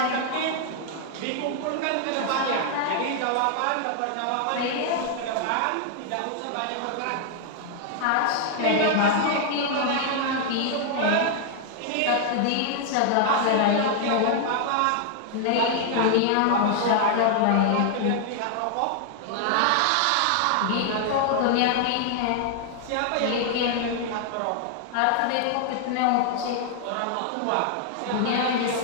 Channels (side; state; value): both; different; correlation 0.00